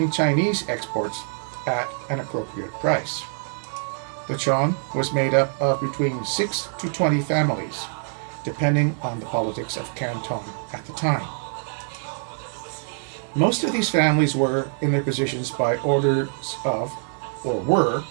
Chinese exports at an appropriate price. The Chong was made up of between 6 to 20 families, depending on the politics of Canton at the time. Most of these families were in their positions by orders of, or were,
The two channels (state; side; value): silent; left; 62 dB below the other